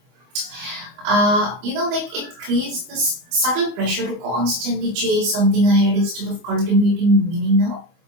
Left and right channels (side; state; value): left; late; 24 ms